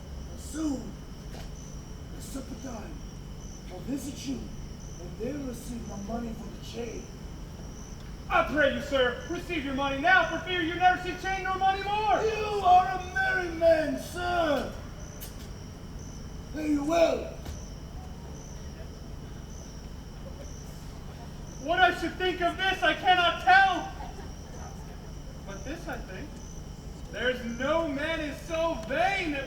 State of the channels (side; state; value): both; identical; correlation 1.00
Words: And soon, at supper time, I'll visit you, and then receive my money for the chain. I pray you, sir, receive your money now, for fear you never see chain nor money more. You are a merry man, sir. Fare you well. What I should think of this, I cannot tell. But this I think, there's no man is so vain that